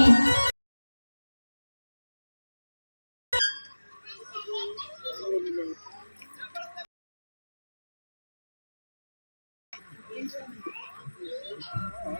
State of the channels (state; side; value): inverted; both; correlation -1.00